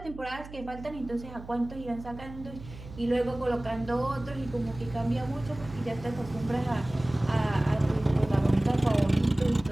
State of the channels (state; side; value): noise; right; hum, 15 dB below the sound